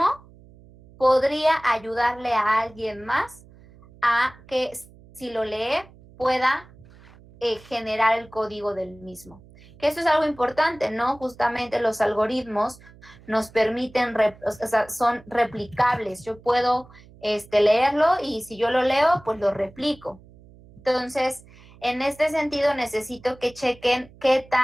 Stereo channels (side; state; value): right; noise; hum, 24 dB below the sound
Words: podría ayudarle a alguien más a que si lo lee pueda generar el código del mismo. Que eso es algo importante, ¿no? Justamente los algoritmos nos permiten, son replicables. Yo puedo leerlo y si yo lo leo, pues lo replico. Entonces, en este sentido, necesito que chequen qué